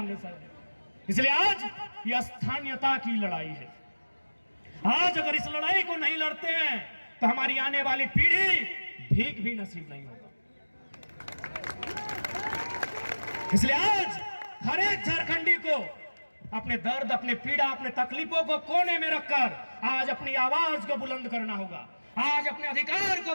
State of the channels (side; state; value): both; inverted; correlation -1.00